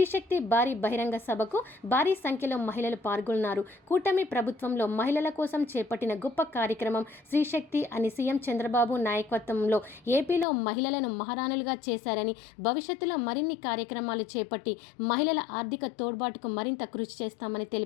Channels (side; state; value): right; drops out; at 10.5 s